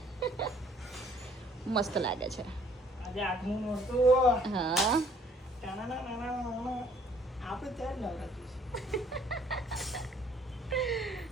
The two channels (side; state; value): both; normal; correlation 0.60